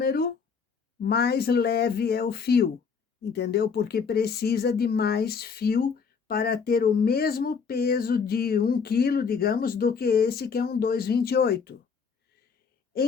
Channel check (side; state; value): right; quieter; 5.8 dB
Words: mais leve é o fio, entendeu? Porque precisa de mais fio para ter o mesmo peso de 1 quilo, digamos, do que esse que é um 2,28.